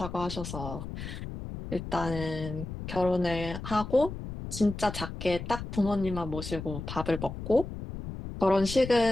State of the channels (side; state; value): left; noise; rumble, 8 dB below the sound